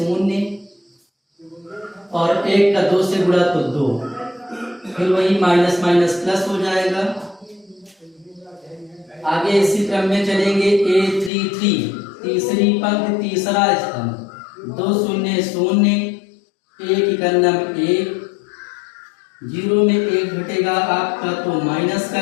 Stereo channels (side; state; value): right; drops out; at 11.3 s